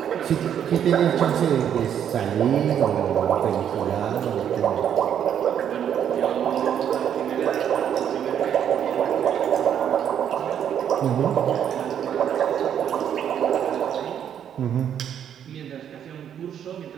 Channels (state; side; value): quieter; left; 9.2 dB